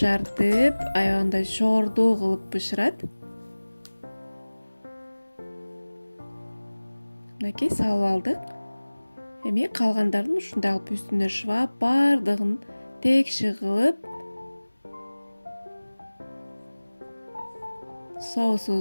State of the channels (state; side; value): inverted; both; correlation -1.00